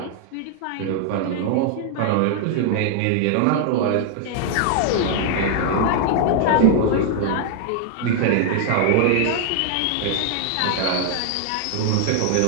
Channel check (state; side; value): different; both; correlation 0.00